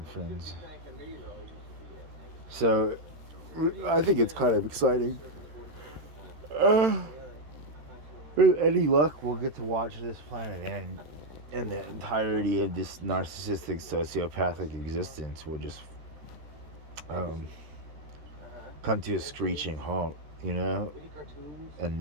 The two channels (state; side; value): late; left; 13 ms